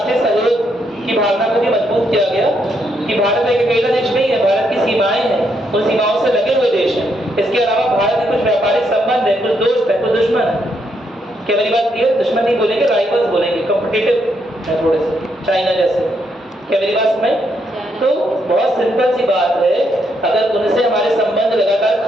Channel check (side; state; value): both; normal; correlation 0.77